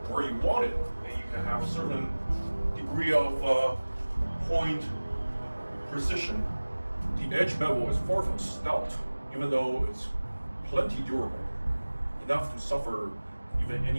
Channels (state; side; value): inverted; both; correlation -1.00